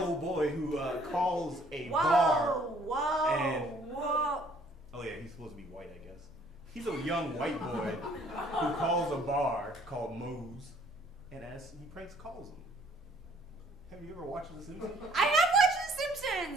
boy who calls a bar. Whoa! Oh yeah, he's supposed to be white, I guess. He's a young white boy who calls a bar called Moe's, and as he pranks calls them. Have you ever watched The Simpsons? I have watched The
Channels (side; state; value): both; normal; correlation 0.60